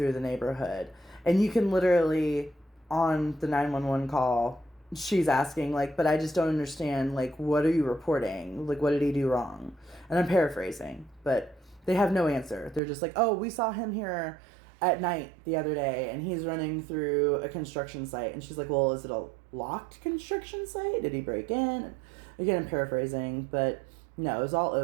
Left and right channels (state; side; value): drops out; left; at 12.8 s